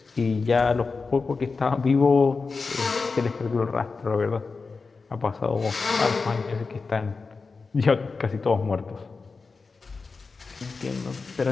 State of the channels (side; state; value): right; quieter; 4.4 dB